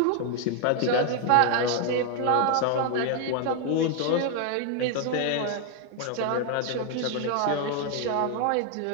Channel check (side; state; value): both; different; correlation 0.00